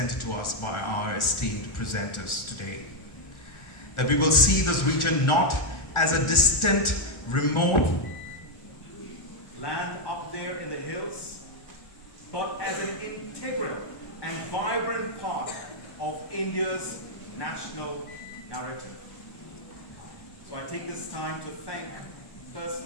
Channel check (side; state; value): right; late; 1.4 ms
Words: to us by our esteemed presenters today. That we will see this region not as a distant, remote land up there in the hills, but as an integral and vibrant part of India's national narrative. So I take this time to thank